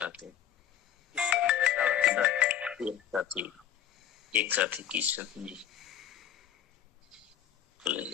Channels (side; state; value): right; quieter; 9.9 dB